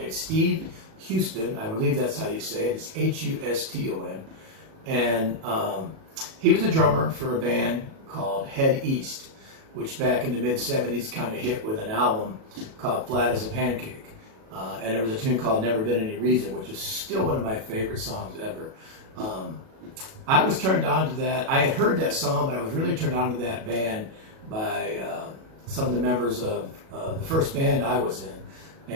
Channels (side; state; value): left; late; 37 ms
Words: Steve Huston. I believe that's how you say it. It's Huston. And he was a drummer for a band called Head East, which back in the mid-'70s kind of hit with an album called Flat As A Pancake. And there was a tune called Never Been Any Reason, which is still one of my favorite songs ever. I was turned on to that. I had heard that song, but I was really turned on to that band by some of the members of the first band I was in,